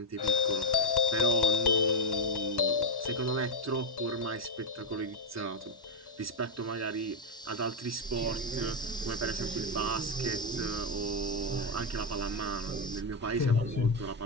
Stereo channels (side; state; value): both; normal; correlation 0.03